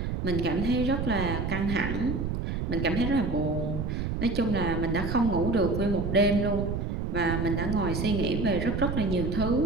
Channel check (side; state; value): right; noise; rumble, 2 dB below the sound